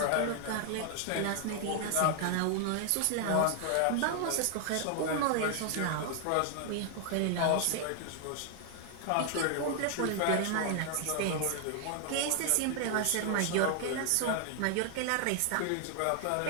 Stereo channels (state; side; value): different; both; correlation 0.00